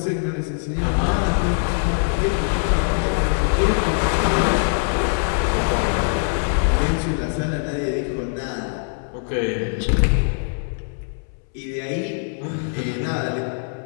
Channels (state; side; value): silent; right; 64 dB below the other